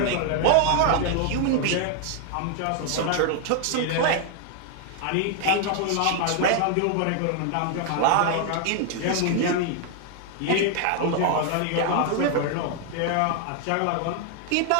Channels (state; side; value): different; both; correlation 0.00